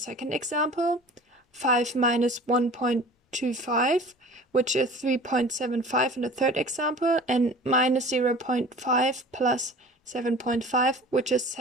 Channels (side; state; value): both; normal; correlation 0.42